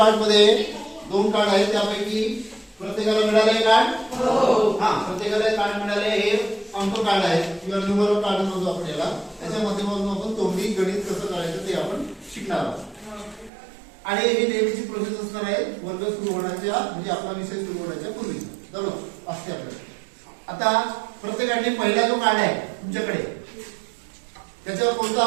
मध्ये 2 कार्ड आहेत, त्यापैकी प्रत्येकाला मिळाले कार्ड. हा, प्रत्येकाला कार्ड मिळाले. हे अंक कार्ड आहेत किंवा न्यूमरल कार्ड म्हणतो आपण याला. त्याच्या माध्यमातून आपण तोंडी गणित कसं करायचं ते आपण शिकणार आहोत. आणि ही नेहमीची प्रोसेस असणार आहे वर्ग सुरू होण्याच्या, म्हणजे आपला विषय सुरू होण्याच्या पूर्वी बरोबर असते आपल्याला. आता प्रत्येकाने पहिला जो कार्ड आहे तुमच्याकडे, त्याच्यावर कोणता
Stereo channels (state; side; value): drops out; left; at 13.5 s